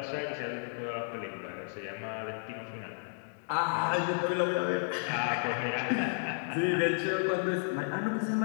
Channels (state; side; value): silent; right; digital silence